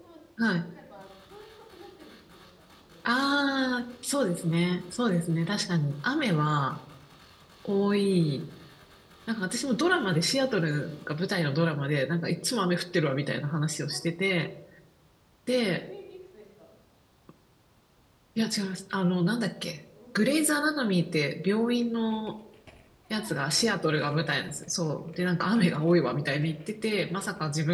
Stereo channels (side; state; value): both; identical; correlation 1.00